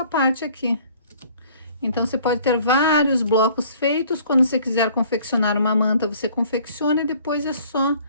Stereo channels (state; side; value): inverted; both; correlation -0.55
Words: parte aqui. Então você pode ter vários blocos feitos. Quando você quiser confeccionar uma manta, você confecciona e depois é só